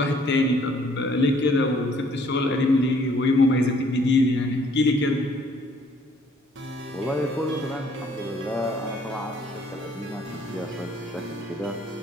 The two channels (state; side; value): normal; both; correlation 0.61